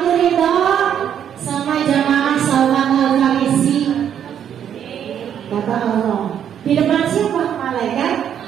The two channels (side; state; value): left; quieter; 9.2 dB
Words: ridho sama jamaah Salman Al-Farisi, kata Allah. Di depan siapa? Malaikat